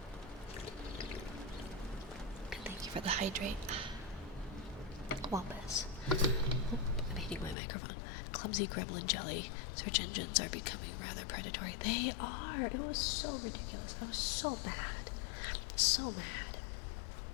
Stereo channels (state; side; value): drops out; right; at 7.6 s